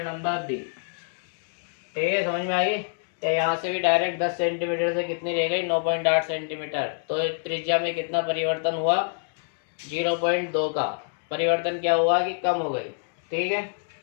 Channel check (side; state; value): right; silent; digital silence